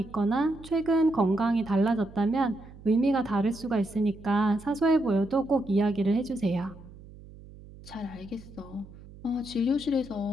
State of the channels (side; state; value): right; noise; hum, 19 dB below the sound